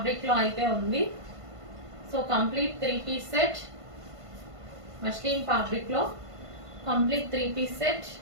లో అయితే ఉంది. So complete 3 piece set muslin fabric లో కంప్లీట్ 3 పీస్ సెట్.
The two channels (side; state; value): left; late; 1.5 ms